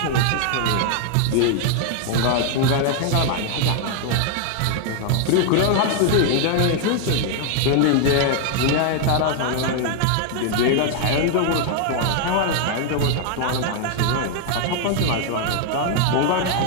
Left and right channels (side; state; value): both; different; correlation 0.00